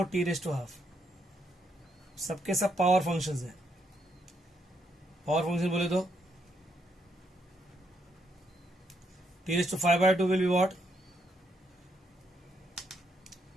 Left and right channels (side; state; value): both; normal; correlation 0.76